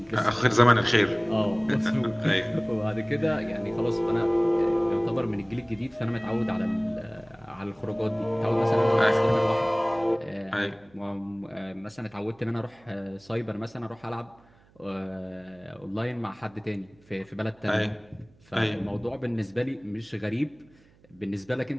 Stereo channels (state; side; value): noise; right; hum, 29 dB below the sound